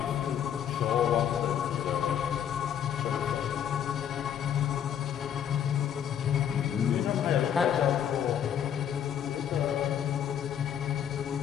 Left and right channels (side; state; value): right; quieter; 9.3 dB